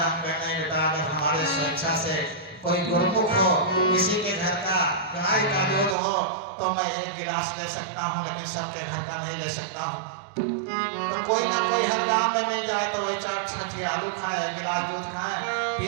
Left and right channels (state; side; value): drops out; left; at 6.0 s